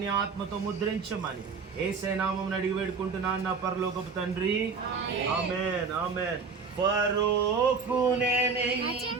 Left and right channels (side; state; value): left; quieter; 5.1 dB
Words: నీ ఆత్మతో ముద్రించమని యేసయ్య నామమున అడిగి వేడుకుంటున్నాను నా పరలోకపు తండ్రి. ఆమేన్ ఆమేన్. ఫరోకు